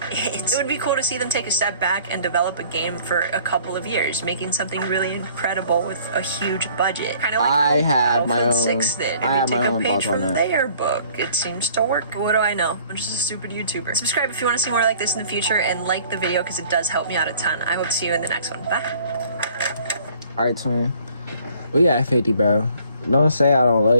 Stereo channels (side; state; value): both; inverted; correlation -0.55